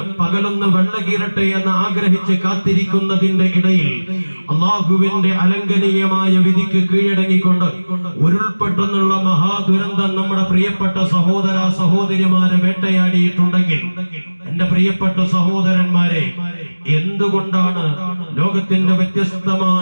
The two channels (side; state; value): both; inverted; correlation -1.00